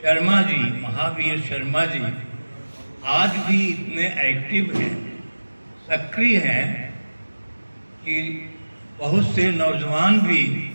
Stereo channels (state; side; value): inverted; both; correlation -1.00